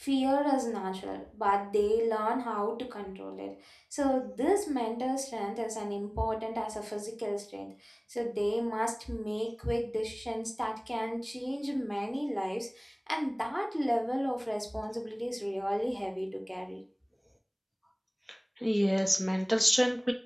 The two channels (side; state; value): both; identical; correlation 1.00